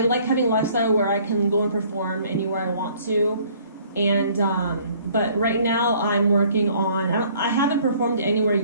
like having a lifestyle where I can go and perform anywhere I want to, and but right now I'm working on. I haven't performed anywhere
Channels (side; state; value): both; inverted; correlation -0.57